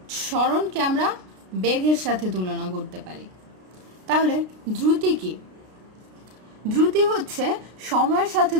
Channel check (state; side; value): late; left; 33 ms